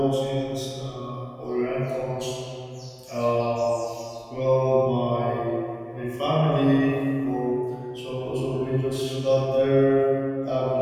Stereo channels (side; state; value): both; identical; correlation 1.00